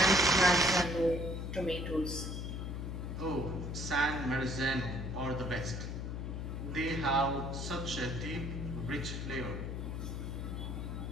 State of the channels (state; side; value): noise; left; hum, 4 dB below the sound